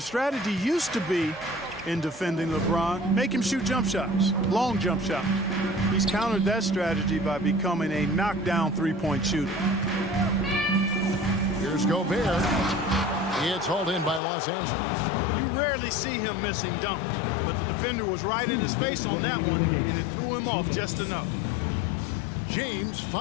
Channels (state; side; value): drops out; right; at 14.2 s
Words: strategy used to be in defending LeBron. Make him shoot jump shots, long jump shots. He's countered that strategy by becoming a knockdown three-point shooter. Here's Gobert. It's hauled in by Los Angeles. You rarely see him missing dunks, but the defender was right in his face on that one, and it threw him off just enough. James